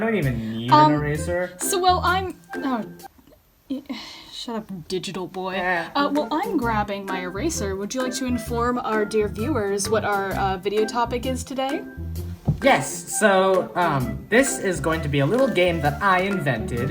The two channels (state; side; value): identical; both; correlation 1.00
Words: even need an eraser. Shut up, digital boy. Yeah. I'm grabbing my eraser. Would you like to inform our dear viewers what our video topic is today? Yes, so, this is going to be a little game that I